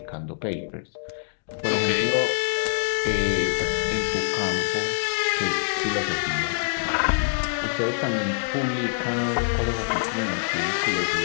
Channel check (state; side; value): silent; right; digital silence